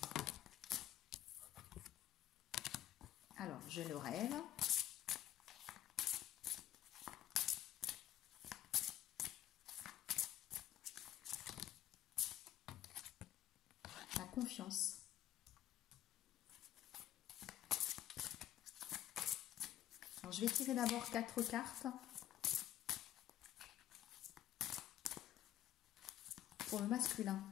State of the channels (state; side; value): quieter; right; 12.0 dB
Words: Alors, je le rêve. La confiance. Alors, je vais tirer d'abord 4 cartes pour le masculin